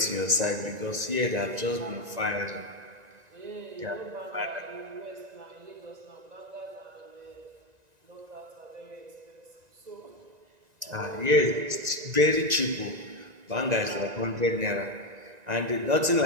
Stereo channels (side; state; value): left; late; 1.9 ms